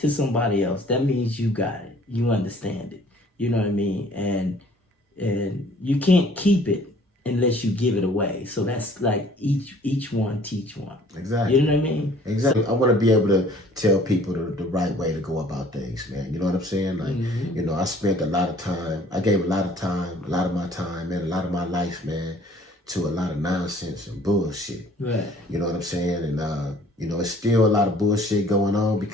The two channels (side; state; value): both; normal; correlation 0.55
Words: somebody else, that means you got it. You understand it. You know what I mean? And you can't keep it unless you give it away. So that's like each one teach one. Exactly. You know what I mean? Exactly. I want to be able to tell people the right way to go about things, man. You know what I'm saying? Like, you know, I spent a lot of time. I gave a lot of time, a lot of my time, and a lot of my life, man, to a lot of nonsense and bullshit. Right. You know what I'm saying? And you know, it's still a lot of bullshit going on